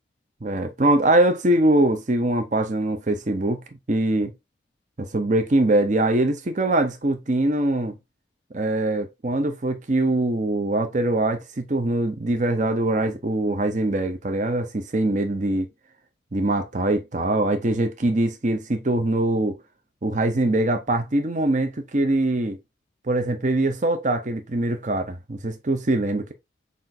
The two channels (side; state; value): both; normal; correlation 0.50